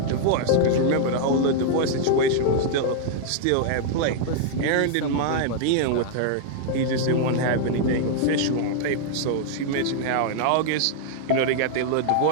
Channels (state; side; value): different; both; correlation -0.01